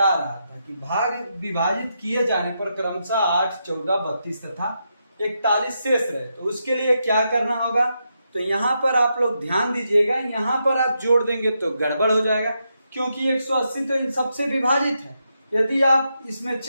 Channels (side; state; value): both; inverted; correlation -0.83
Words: रहा था कि भाग विभाजित किए जाने पर क्रमशः 8, 14, 32 तथा 41 शेष रहे, तो उसके लिए क्या करना होगा, तो यहाँ पर आप लोग ध्यान दीजिएगा। यहाँ पर आप जोड़ देंगे तो गड़बड़ हो जाएगा, क्योंकि 180 तो इन सबसे विभाजित है। यदि आप इसमें